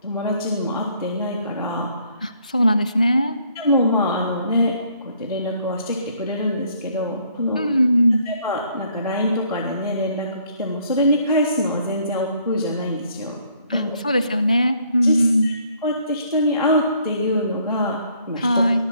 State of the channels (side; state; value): both; inverted; correlation -0.65